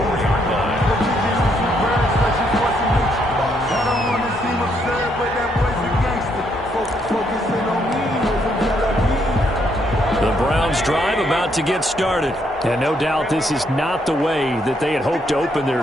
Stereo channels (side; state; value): both; normal; correlation 0.73